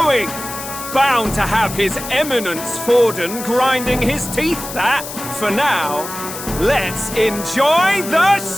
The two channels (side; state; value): left; noise; hiss, 10 dB below the sound